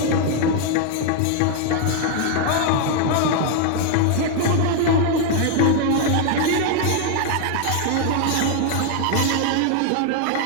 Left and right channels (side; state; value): both; different; correlation 0.00